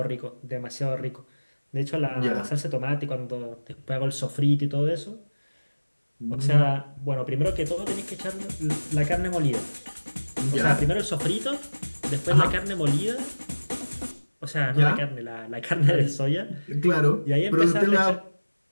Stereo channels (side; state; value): both; inverted; correlation -1.00